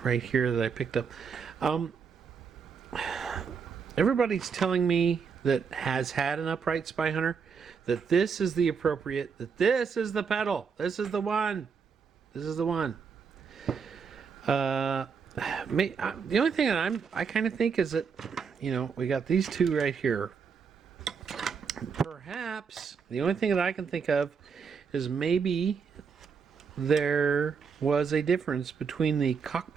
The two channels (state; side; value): quieter; left; 6.0 dB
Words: right here that I picked up. Um, Everybody's telling me that has had an upright Spy Hunter that this is the appropriate, that this is the pedal, this is the one, this is the one. The only thing that I kind of think is that, we got these two right here. Perhaps the only thing that I can think of is maybe there was a difference between the